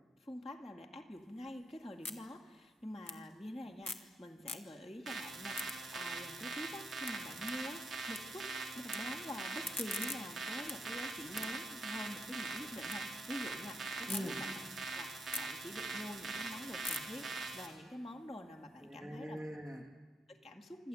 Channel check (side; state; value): both; normal; correlation 0.79